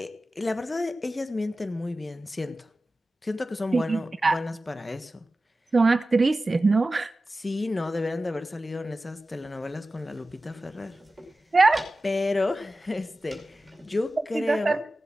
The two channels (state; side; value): normal; both; correlation 0.95